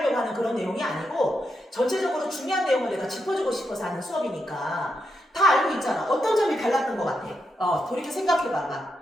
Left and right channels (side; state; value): both; normal; correlation 0.84